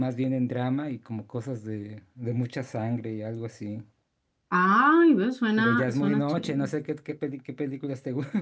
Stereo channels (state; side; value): identical; both; correlation 1.00